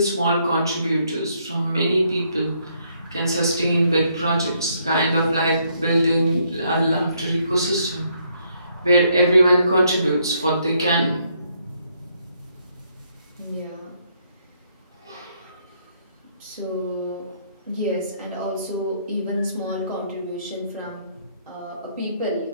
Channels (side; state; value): both; inverted; correlation -0.72